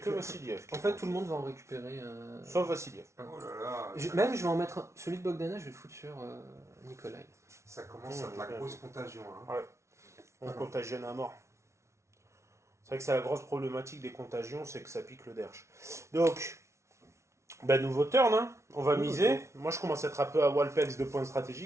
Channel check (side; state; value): left; late; 0.13 ms